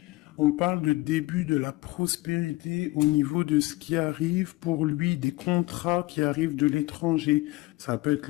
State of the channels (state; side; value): quieter; right; 20.6 dB